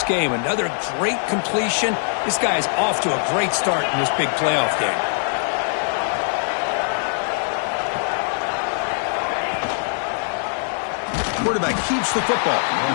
game. Another great completion. This guy is off to a great start in this big playoff game. Quarterback keeps the football.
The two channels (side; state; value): right; silent; 64 dB below the other